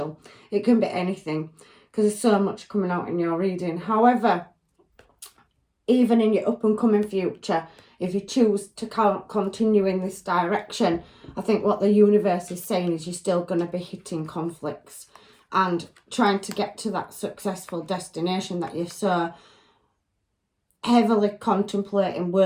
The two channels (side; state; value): both; identical; correlation 1.00